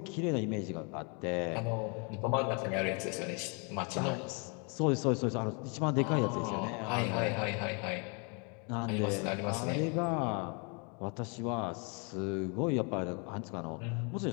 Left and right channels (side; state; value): right; quieter; 34.6 dB